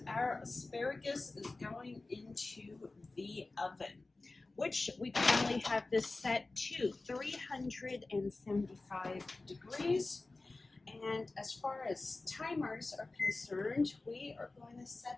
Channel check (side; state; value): right; quieter; 3.3 dB